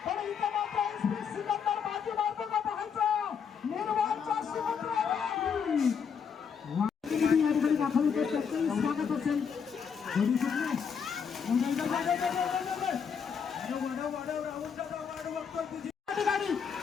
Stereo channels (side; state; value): right; quieter; 6.8 dB